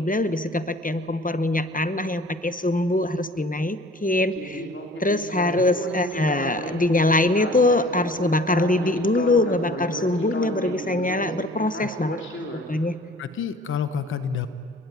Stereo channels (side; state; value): both; normal; correlation 0.49